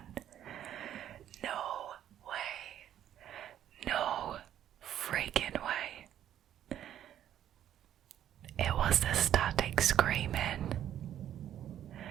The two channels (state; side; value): quieter; left; 11.0 dB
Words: No way. No freaking way. It was the static screaming.